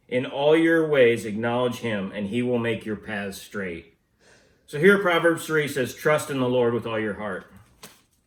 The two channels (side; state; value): both; identical; correlation 1.00